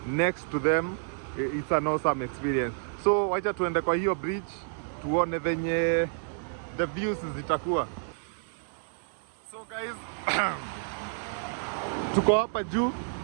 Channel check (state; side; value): silent; left; digital silence